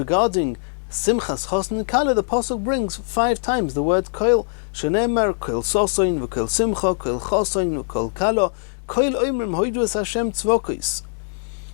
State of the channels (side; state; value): right; silent; digital silence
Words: simchas chosen kala, the pasuk brings 5 times the word koil. Shenemar koil sosoin v'koil simcha koil chosoin v'koil kala koil oimrim hoidu es Hashem tzvokis.